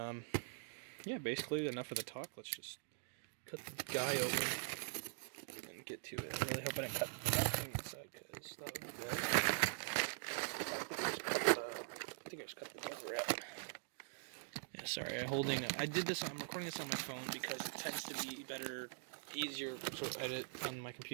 yeah, basically enough of the talk. Let's just cut the guy open and get to it. I really hope I didn't cut nothing inside, because that would be bad. I think I just cut the cover out. Yeah, sorry. I'm recording this on my phone because it tends to be easier to edit on my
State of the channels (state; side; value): silent; left; digital silence